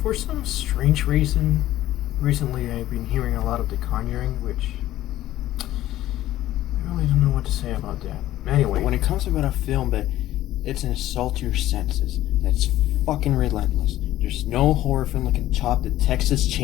some strange reason, recently I've been hearing a lot of The Conjuring, which I really don't know what to say about that. Anyway, when it comes about a film that it's an assault to your senses, that's fucking relentless, there's no horror film that can top the Texas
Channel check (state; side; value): quieter; right; 14.3 dB